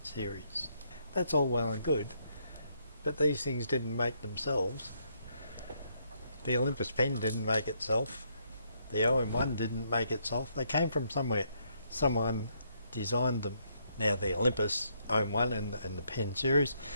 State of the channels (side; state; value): both; inverted; correlation -0.73